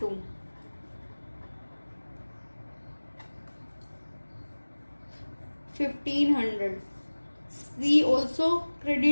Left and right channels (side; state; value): both; inverted; correlation -1.00